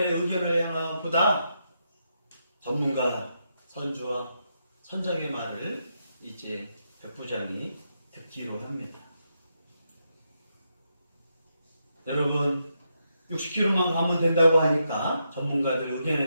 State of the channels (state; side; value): inverted; both; correlation -0.82